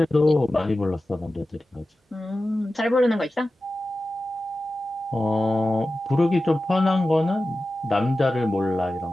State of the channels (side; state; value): both; normal; correlation 0.94